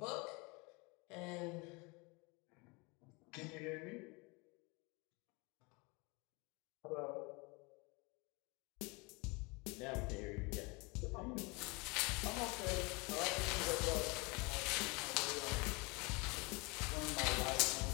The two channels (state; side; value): quieter; right; 27.7 dB